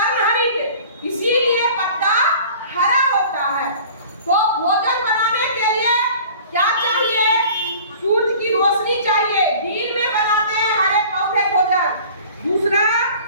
इसीलिए पत्ता हरा होता है। तो भोजन बनाने के लिए क्या चाहिए? सूरज की रोशनी चाहिए। दिन में बनाते हैं हरे पौधे भोजन। दूसरा,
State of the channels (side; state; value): both; inverted; correlation -0.45